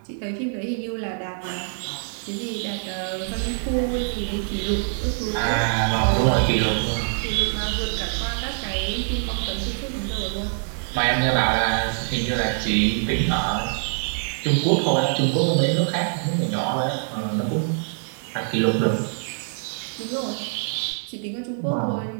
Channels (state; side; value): silent; left; digital silence